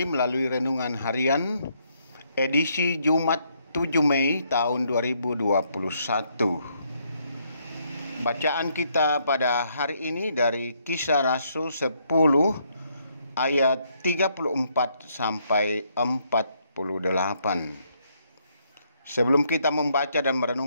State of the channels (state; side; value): inverted; both; correlation -0.73